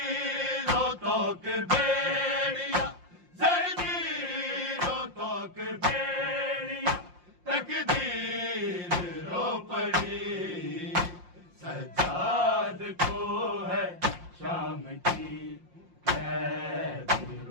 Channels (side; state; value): left; late; 5.7 ms